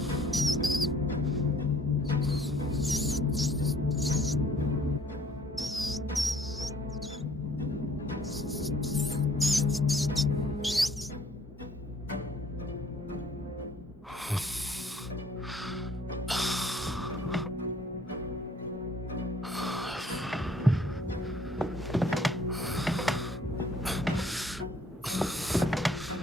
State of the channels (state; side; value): normal; both; correlation 0.59